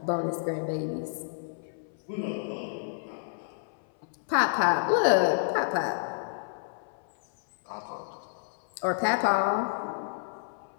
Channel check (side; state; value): right; silent; 58 dB below the other